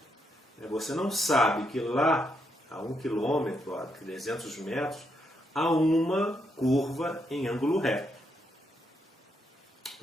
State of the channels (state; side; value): normal; both; correlation 0.78